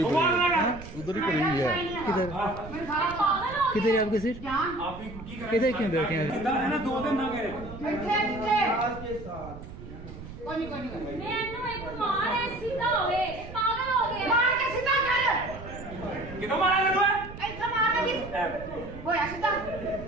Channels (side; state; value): right; noise; rumble, 13 dB below the sound